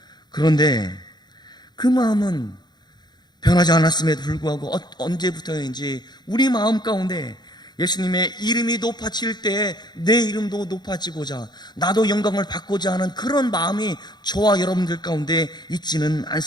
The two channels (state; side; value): late; right; 0.21 ms